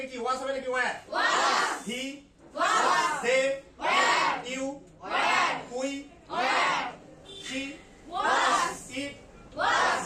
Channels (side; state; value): both; identical; correlation 1.00